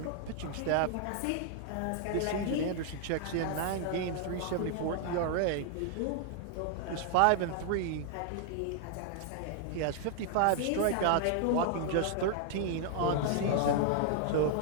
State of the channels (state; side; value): different; both; correlation 0.00